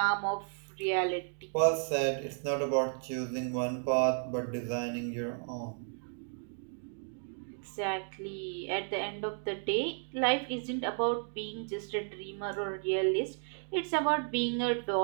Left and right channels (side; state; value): left; silent; 55 dB below the other